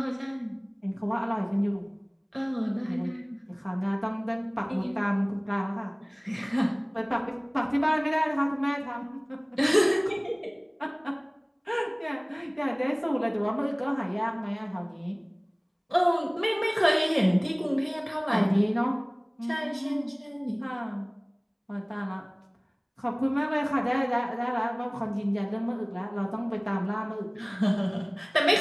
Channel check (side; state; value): both; identical; correlation 1.00